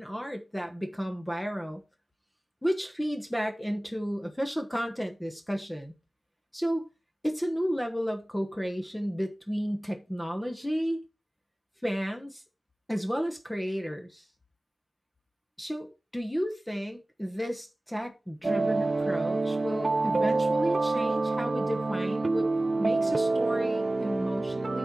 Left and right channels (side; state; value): both; normal; correlation 0.98